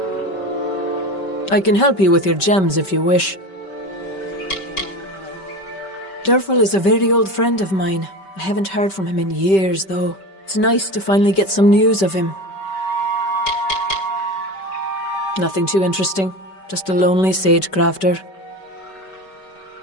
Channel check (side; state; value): right; late; 5.2 ms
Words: I can help you with your gems if you wish. Durfel is a very old friend of mine. I haven't heard from him in years, though. It's nice to finally get some news of him. Nothing too interesting. Just a lonely sage crafter.